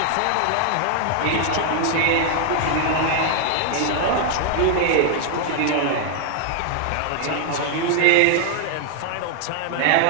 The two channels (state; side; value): different; both; correlation 0.00